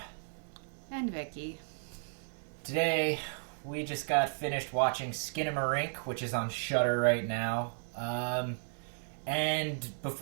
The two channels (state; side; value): silent; left; digital silence